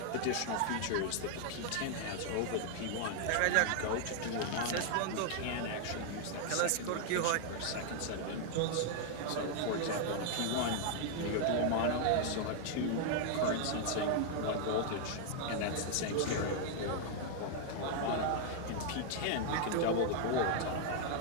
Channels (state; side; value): different; both; correlation 0.00